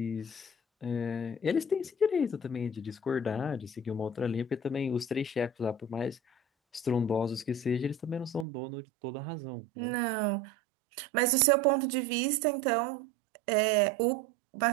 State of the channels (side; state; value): left; drops out; at 8.5 s